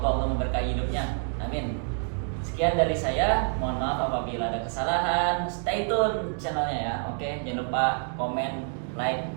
Allah memberkahi hidupnya, amin. Sekian dari saya, mohon maaf apabila ada kesalahan. Stay tune channelnya ya, oke. Jangan lupa komen, like,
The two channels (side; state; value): left; silent; 58 dB below the other